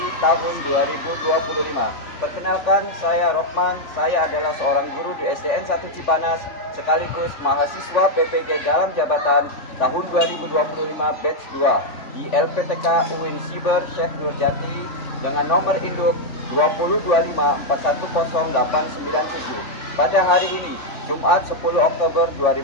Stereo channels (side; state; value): right; late; 3.4 ms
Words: tahun 2025. Perkenalkan, saya Rokman, saya adalah seorang guru di SDN 1 Cipanas, sekaligus mahasiswa PPG dalam jabatan tahun 2025 batch 2 di LPTK UIN Siber Syekh Nurjati dengan nomor induk 2025410897. Pada hari ini, Jumat 10 Oktober